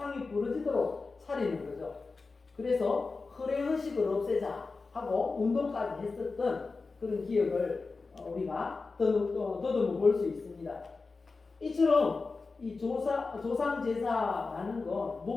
부러지도록 차리는 거죠. 그래서 허례의식을 없애자 하고 운동까지 했었던 그런 기억을 우리가 더듬어 볼 수 있습니다. 이처럼 이 조상 제사라는 건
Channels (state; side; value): quieter; right; 4.1 dB